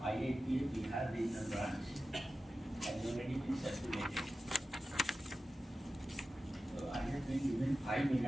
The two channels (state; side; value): normal; both; correlation 0.93